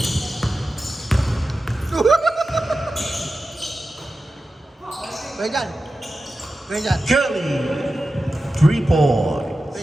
Kuya dyan. Kuya dyan. Kelly, 3 points. Kuya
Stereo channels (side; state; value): both; normal; correlation 0.93